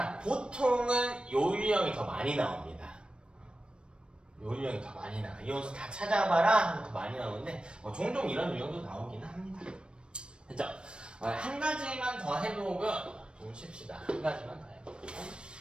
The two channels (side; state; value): left; late; 0.055 ms